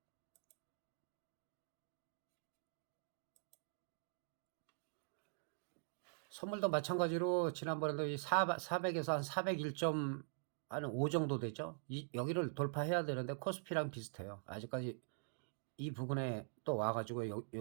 선물도 마찬가지로 지난번에도 이 400에서 한 401.5 정도 되죠. 여기를 돌파해야 되는데 코스피랑 비슷해요. 아직까지 이 부분에 또 와가지고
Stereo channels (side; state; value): left; silent; digital silence